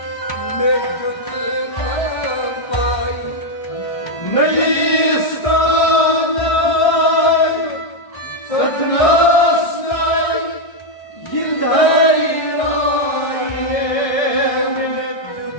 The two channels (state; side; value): late; right; 1.6 ms